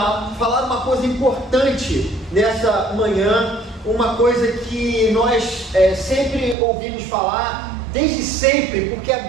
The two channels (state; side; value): drops out; left; at 6.6 s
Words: falar uma coisa importante nessa manhã, uma coisa que nós sempre ouvimos falar, desde sempre, porque a